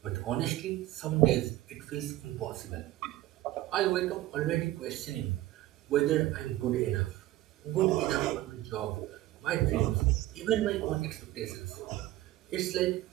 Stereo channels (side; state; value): left; quieter; 15.8 dB